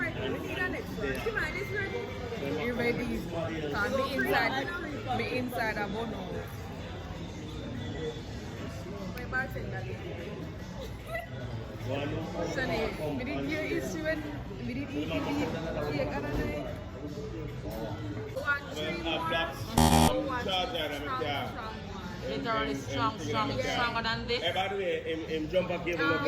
We need that next one. Come on, it's ready. You ready? Because me inside a bono. My bartender. Sunny, we did hear issue and we did eat cake other night. 1, 3, 1. Literally stronger than this. By the way, him jump up here.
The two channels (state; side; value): identical; both; correlation 1.00